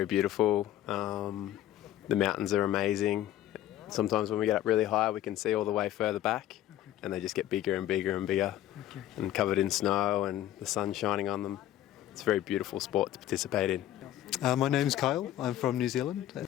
beautiful. The mountains are amazing. Sometimes when we get up really high, we can see all the way further back, and they just get bigger and bigger and bigger, and covered in snow and the sun shining on them. It's a very beautiful sport to participate in. My name's Kyle. I'm from New Zealand.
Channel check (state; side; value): quieter; right; 12.9 dB